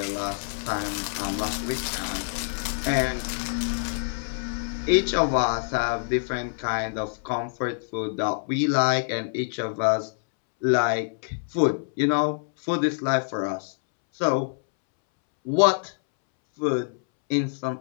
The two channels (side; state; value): right; silent; 61 dB below the other